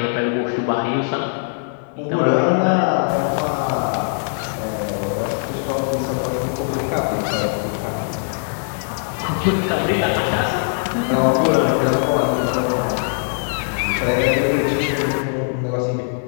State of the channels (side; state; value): right; silent; 61 dB below the other